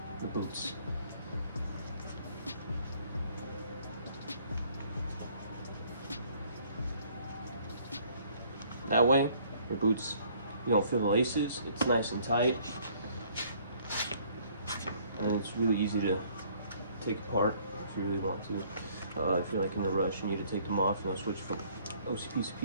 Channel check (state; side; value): inverted; both; correlation -0.60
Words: the boots. That way your boots, you don't feel the laces, it's nice and tight. and it's really easy to take apart if you really want to. If you're like in a rush, you need to take them off, switch from OCPs to